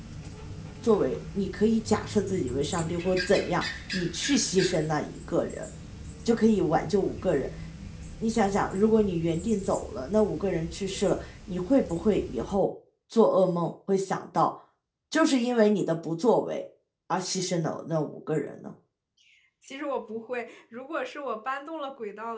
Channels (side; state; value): both; identical; correlation 1.00